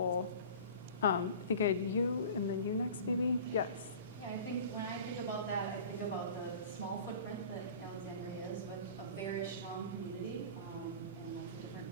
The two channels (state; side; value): inverted; both; correlation -0.40